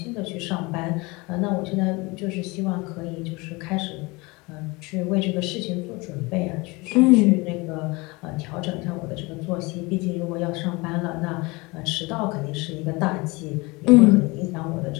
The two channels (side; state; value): right; quieter; 25.0 dB